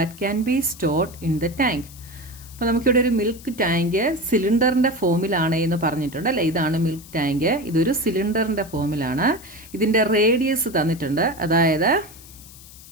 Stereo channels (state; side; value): noise; left; hiss, 19 dB below the sound